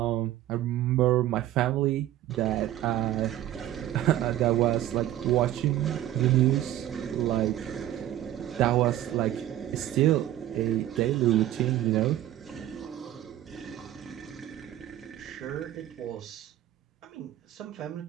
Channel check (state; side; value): quieter; left; 13.2 dB